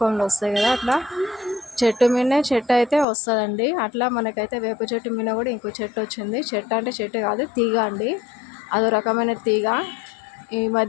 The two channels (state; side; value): drops out; right; at 3.1 s